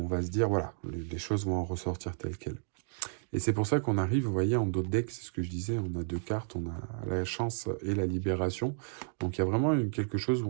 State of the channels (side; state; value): left; silent; digital silence